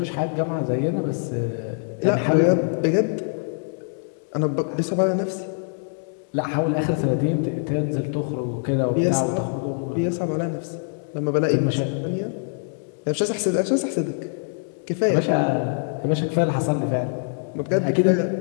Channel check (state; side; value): silent; right; digital silence